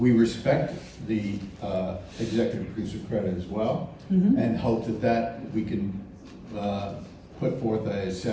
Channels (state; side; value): identical; both; correlation 1.00